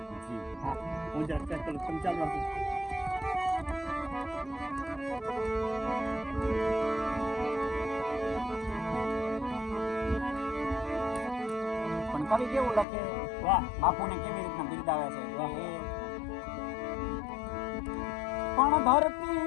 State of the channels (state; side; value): drops out; right; at 12.9 s